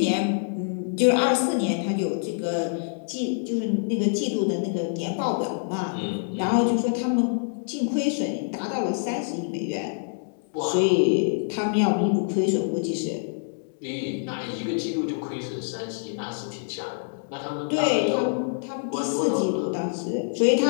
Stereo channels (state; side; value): silent; right; digital silence